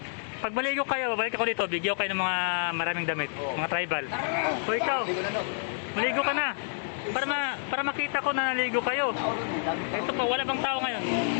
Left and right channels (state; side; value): silent; right; digital silence